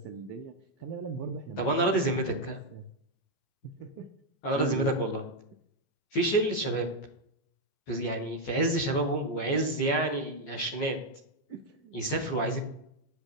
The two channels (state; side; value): late; right; 14 ms